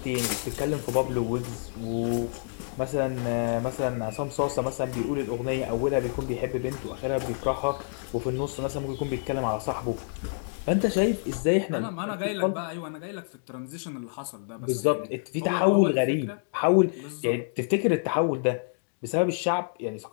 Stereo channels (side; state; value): right; silent; digital silence